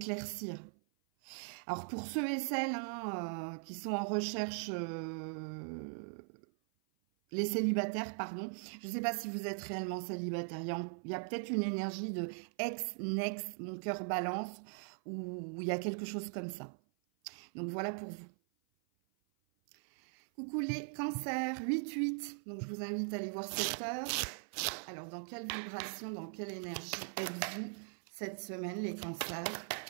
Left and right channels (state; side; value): silent; left; 51 dB below the other